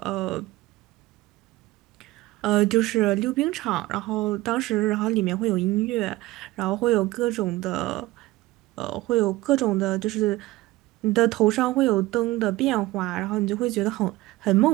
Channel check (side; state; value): left; quieter; 18.4 dB